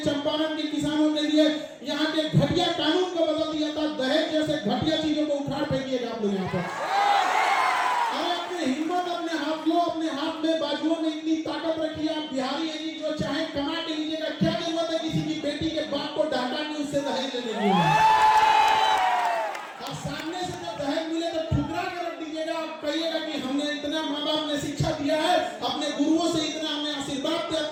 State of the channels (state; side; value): identical; both; correlation 1.00